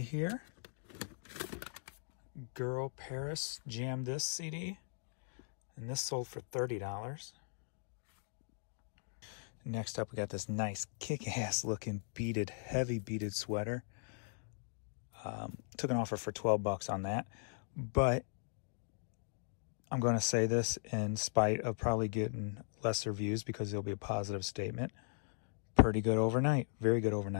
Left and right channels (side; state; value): right; silent; digital silence